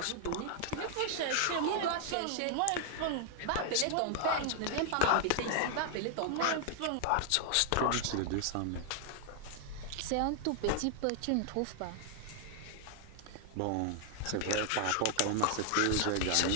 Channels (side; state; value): both; different; correlation 0.00